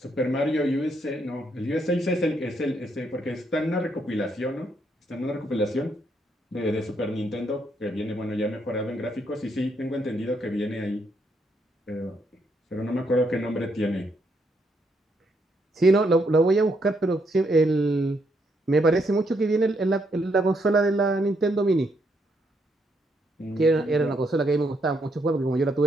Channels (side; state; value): both; normal; correlation 0.75